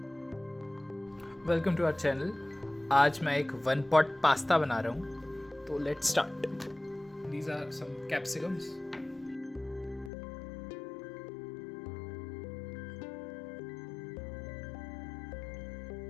Welcome to our channel. आज मैं एक 1 पॉट पास्ता बना रहा हूँ, तो let's start. These are some capsicums.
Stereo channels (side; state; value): right; drops out; at 10.1 s